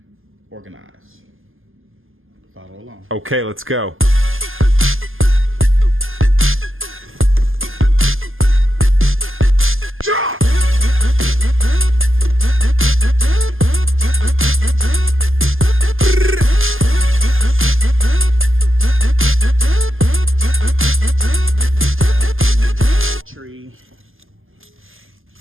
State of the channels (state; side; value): late; left; 0.59 ms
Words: organize. Follow along. Okay, let's go. Tree